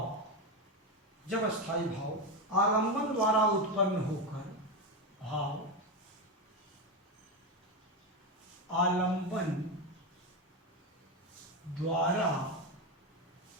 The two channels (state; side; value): normal; both; correlation 0.13